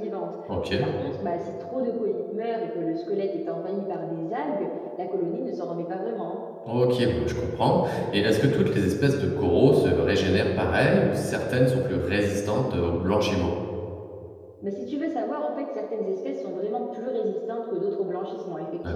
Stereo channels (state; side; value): identical; both; correlation 1.00